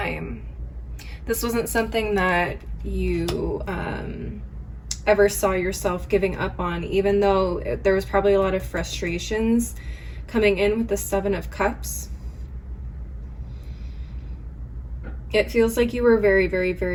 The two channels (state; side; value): identical; both; correlation 1.00